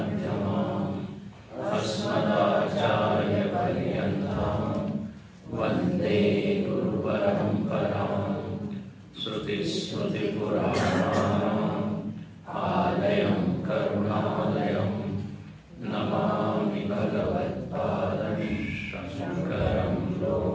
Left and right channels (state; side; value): identical; both; correlation 1.00